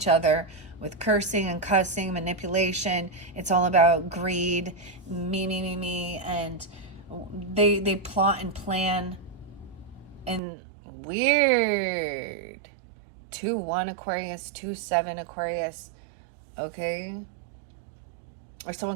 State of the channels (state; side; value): drops out; left; at 10.4 s